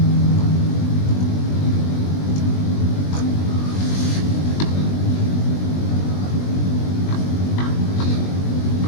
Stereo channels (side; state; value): right; late; 20 ms